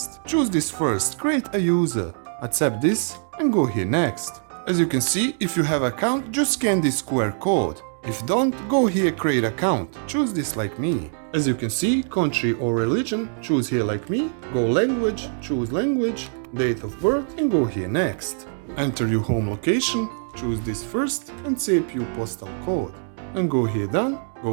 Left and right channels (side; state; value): left; silent; 63 dB below the other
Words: Choose this first, create a user. Accept this and go here next. As you can see, if you have account, just scan this QR code. If don't, go here create account. Choose this like me. As you can see, country or religion, choose here like me. Go language, choose language, date of birth and go here next. Enter your home location, choose this first and save your postal code. And go here done,